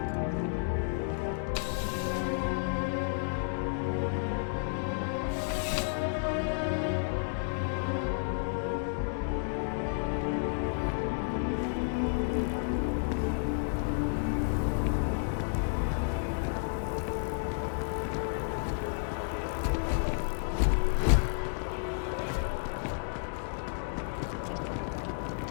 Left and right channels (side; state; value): right; silent; digital silence